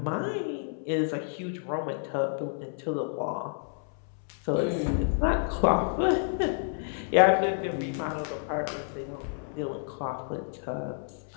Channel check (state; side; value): silent; right; 58 dB below the other